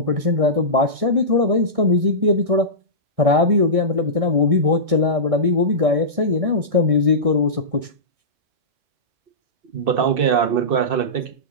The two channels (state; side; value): late; left; 1.6 ms